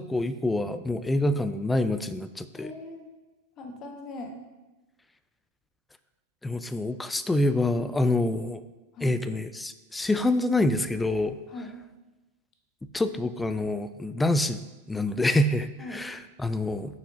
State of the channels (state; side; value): normal; both; correlation 0.80